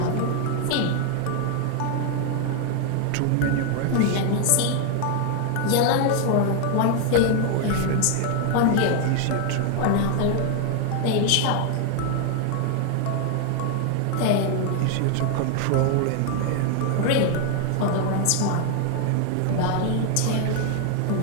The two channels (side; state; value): both; different; correlation 0.00